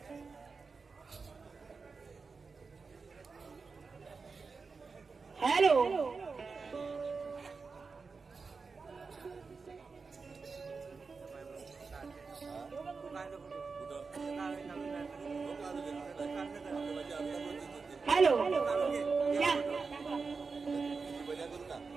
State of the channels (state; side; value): quieter; left; 4.7 dB